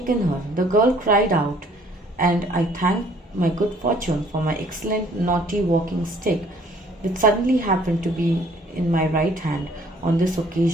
her. The girl cried out, and I thanked my good fortune for my excellent naughty walking stick, which suddenly happened to be in my right hand on this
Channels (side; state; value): both; normal; correlation 0.58